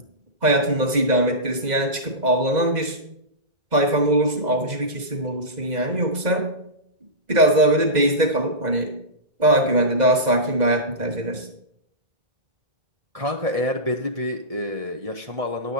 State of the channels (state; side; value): late; left; 2.0 ms